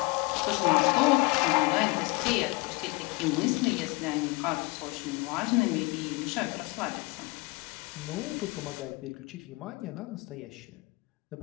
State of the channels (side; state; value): right; quieter; 26.2 dB